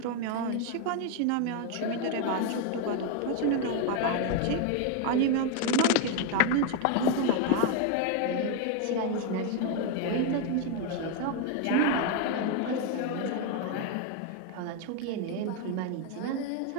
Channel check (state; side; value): different; both; correlation 0.01